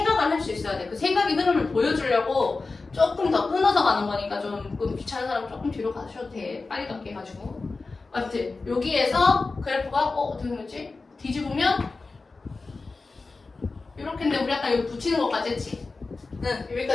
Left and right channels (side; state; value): right; quieter; 3.8 dB